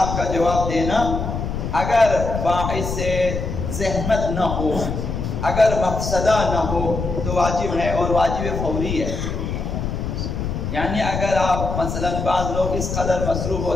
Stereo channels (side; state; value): left; noise; rumble, 3 dB below the sound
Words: کا جواب دینا اگر باعث زحمت نہ ہو، اگر مقصدہ نہ ہو تو واجب ہے، اور واجب فوری ہے۔ یعنی اگر آپ مثلا بعض لوگ اس قدر مصروف